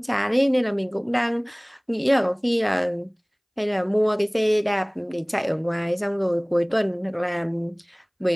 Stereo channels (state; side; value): identical; both; correlation 1.00